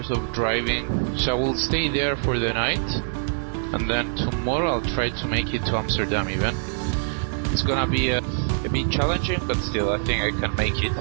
of driving. So I will stay there for the night, and then tomorrow I'll try to make it to Amsterdam even. It's gonna be a bit challenging, but still I think I can make it.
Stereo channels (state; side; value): silent; left; digital silence